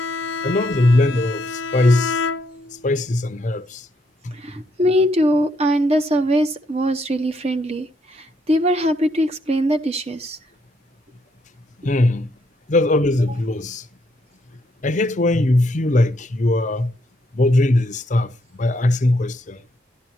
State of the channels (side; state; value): both; normal; correlation 0.74